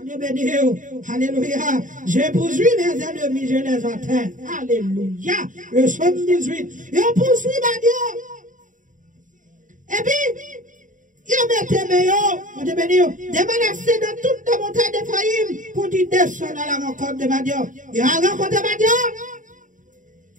Dieu béni. Alléluia. Je poursuis mes ennemis, je les atteins. Alléluia. Le psaume 18. Je poursuis Madians. Et puis, il mettait meilleur, mon Dieu béni, des menacés dans toute la montagne d'Ephraïm pour dire descendre à la rencontre de Madian. Il a rencontré Madian.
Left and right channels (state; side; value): late; left; 0.37 ms